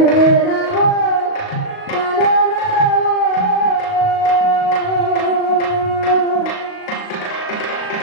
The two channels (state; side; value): late; right; 37 ms